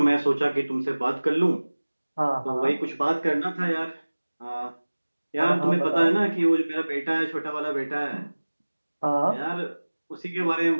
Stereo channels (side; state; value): both; inverted; correlation -1.00